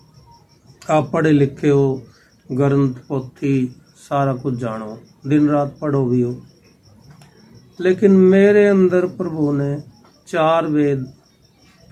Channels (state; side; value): identical; both; correlation 1.00